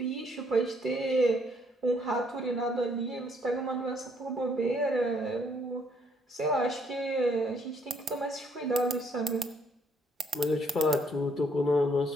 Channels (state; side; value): normal; both; correlation 0.67